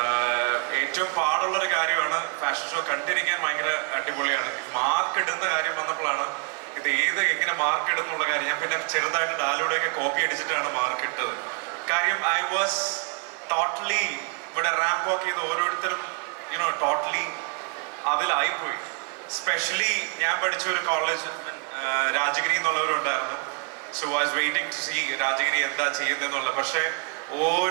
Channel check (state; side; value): quieter; left; 35.2 dB